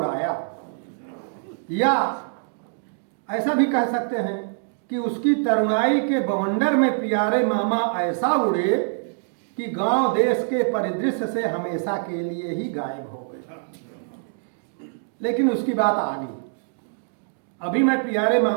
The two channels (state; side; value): silent; left; digital silence